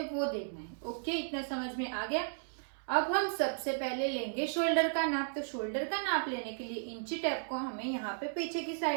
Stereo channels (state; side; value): silent; left; 55 dB below the other